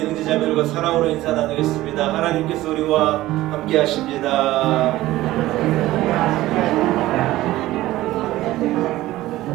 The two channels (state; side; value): quieter; left; 16.3 dB